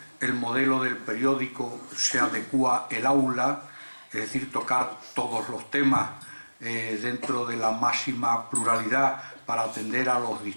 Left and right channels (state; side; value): inverted; both; correlation -1.00